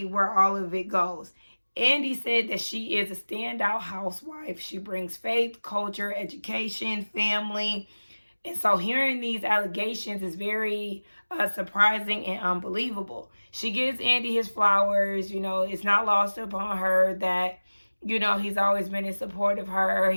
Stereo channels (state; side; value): inverted; both; correlation -1.00